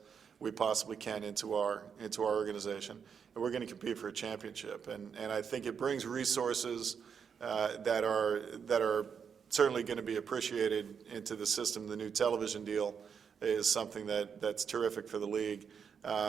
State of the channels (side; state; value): left; quieter; 6.9 dB